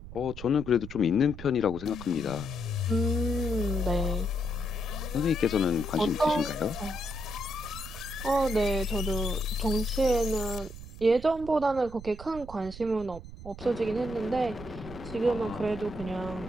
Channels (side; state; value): right; noise; rumble, 13 dB below the sound